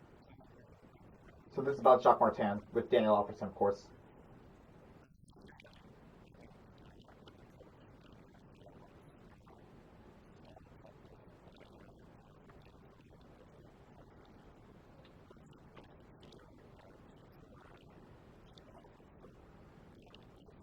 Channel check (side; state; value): both; identical; correlation 1.00